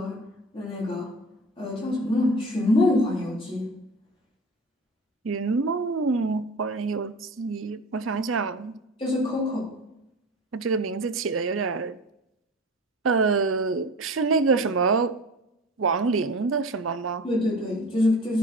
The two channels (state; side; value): normal; both; correlation 0.35